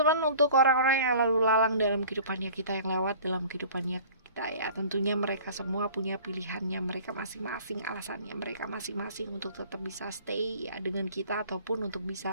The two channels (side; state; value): both; inverted; correlation -0.46